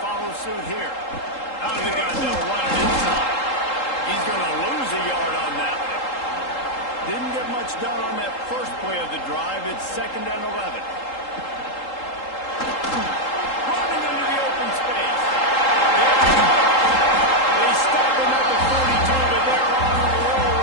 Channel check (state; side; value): late; right; 3.8 ms